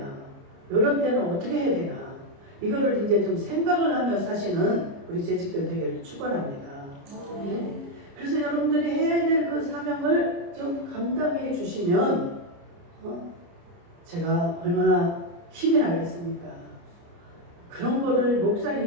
이런 때는 어떻게 해야 되나, 이거를 이제 좀 생각을 하며 사시는 우리 재직들 되기를 축원합니다. 그래서 여러분들이 해야 될 그 사명을 좀 감당해 주시면 제가 얼마나 힘이 나겠습니까? 그런 거를 목사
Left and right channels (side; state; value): left; late; 29 ms